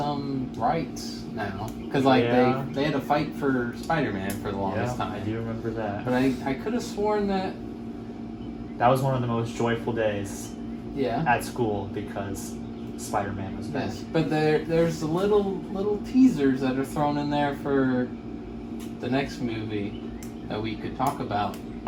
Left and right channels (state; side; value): identical; both; correlation 1.00